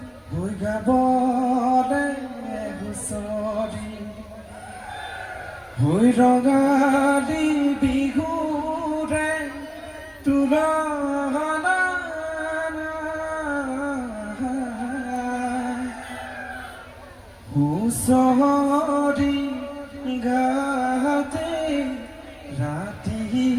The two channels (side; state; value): both; identical; correlation 1.00